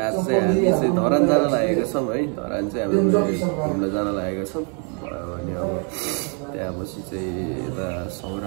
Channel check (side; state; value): left; quieter; 38.1 dB